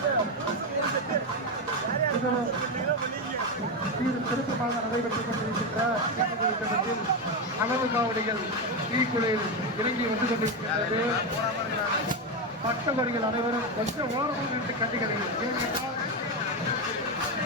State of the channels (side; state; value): both; normal; correlation 0.11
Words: திருத்தமாக நடைபெற்றுக் கொண்டிருக்கின்ற அளவு காவடிகள் தீக்குழியில் இறங்கி வந்து கொண்டிருக்கிறது. பக்தவர்கள் அனைவரும் கொஞ்சம் ஓரமாக நின்று கண்டுகளில்